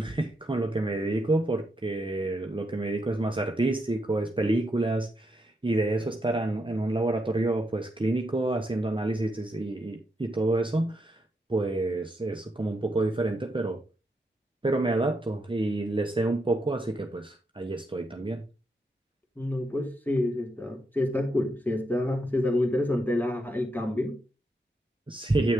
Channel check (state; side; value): normal; both; correlation 0.81